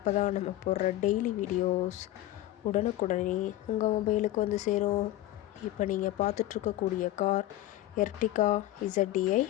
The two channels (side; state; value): right; quieter; 14.9 dB